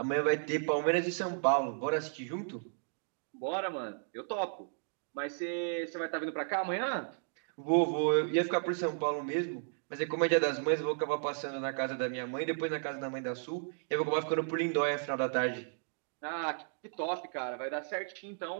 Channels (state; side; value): silent; left; digital silence